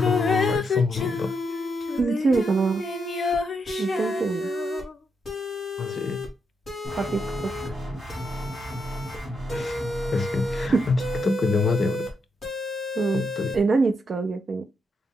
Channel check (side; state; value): both; normal; correlation 0.81